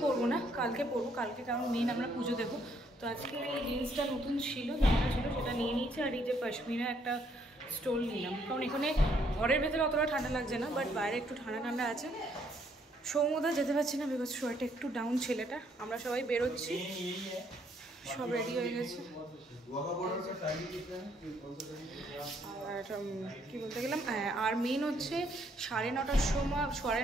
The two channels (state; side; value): normal; both; correlation 0.69